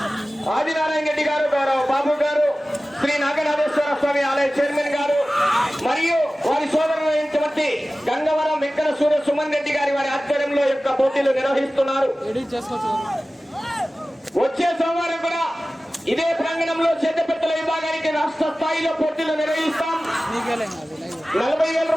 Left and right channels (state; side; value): normal; both; correlation 0.96